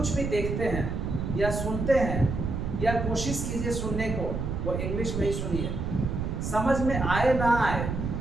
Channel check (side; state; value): right; noise; rumble, 3 dB below the sound